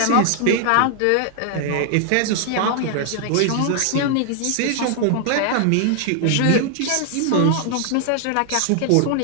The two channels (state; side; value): different; both; correlation 0.00